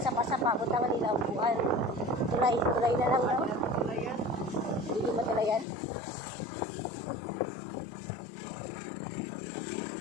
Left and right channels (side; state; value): right; drops out; at 5.7 s